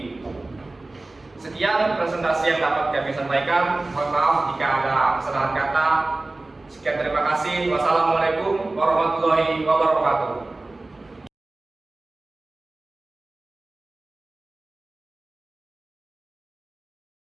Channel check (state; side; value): quieter; left; 3.0 dB